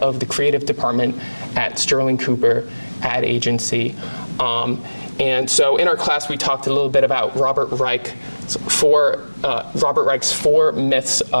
the creative department at Sterling Cooper ad agency. And so in our class, we talked a little bit about Robert Reich's four myths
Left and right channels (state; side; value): inverted; both; correlation -1.00